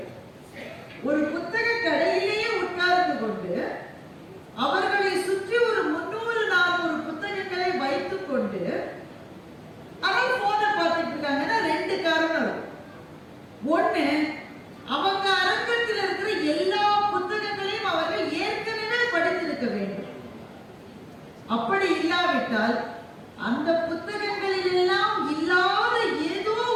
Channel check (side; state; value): both; identical; correlation 1.00